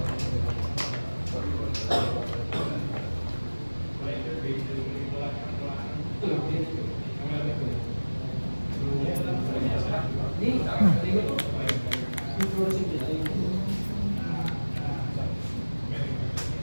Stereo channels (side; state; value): both; inverted; correlation -1.00